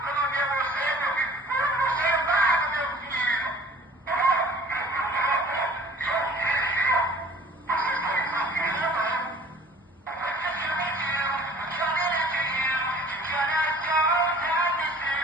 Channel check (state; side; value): normal; both; correlation 0.49